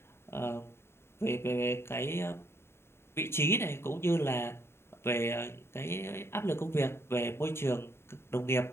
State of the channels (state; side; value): late; right; 0.12 ms